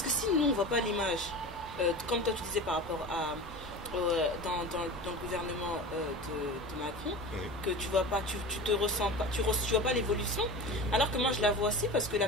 que si nous on voit pas l'image, comme toi tu disais par rapport à dans le gouvernement de Macron, que tu vois pas, tu te ressens pas, tu vois pas l'évolution, alors que moi je la vois aussi parce que la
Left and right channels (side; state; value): both; normal; correlation 0.32